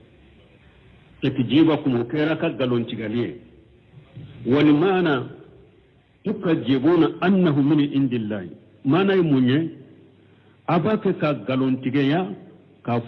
تكذيبكم وكيرا أكا غلون تغيالي ولمانا tukajibuna annahu min indillahi mana munye abake ka galontigeya ka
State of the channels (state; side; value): identical; both; correlation 1.00